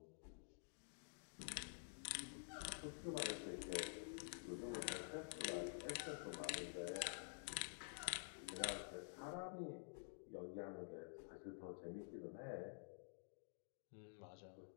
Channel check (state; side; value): silent; right; digital silence